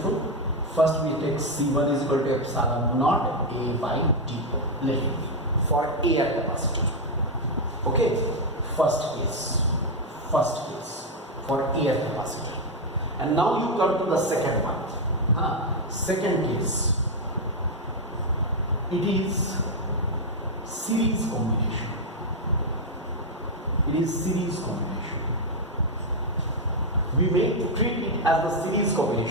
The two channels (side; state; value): both; normal; correlation 0.02